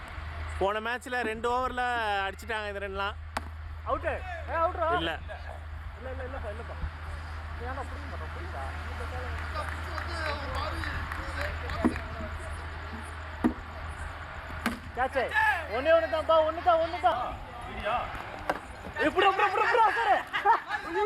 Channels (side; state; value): both; identical; correlation 1.00